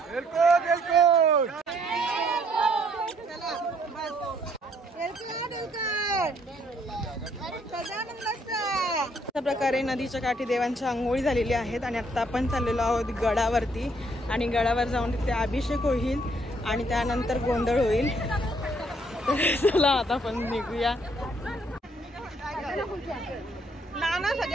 अशा प्रकारे नदीच्या काठी देवांच्या आंघोळी झालेली आहेत आणि आता आपण चाललेलो आहोत गडावरती आणि गडावर जाऊन तिथे अभिषेक होईल आणि त्यानंतर गोंधळ होईल. चला आता आपण निघूया. नाना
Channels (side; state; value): both; normal; correlation 0.67